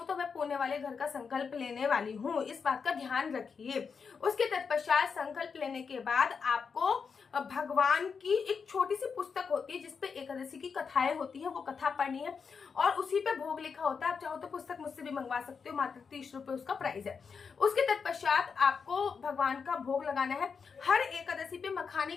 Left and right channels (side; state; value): right; quieter; 5.7 dB